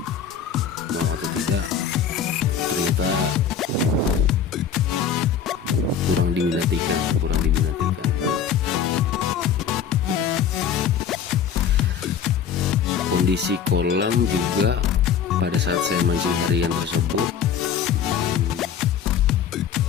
mau atau tidak, ternyata kurang diminatikan. Kondisi kolam juga pada saat saya mancing harian tersebut,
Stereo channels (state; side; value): quieter; right; 7.7 dB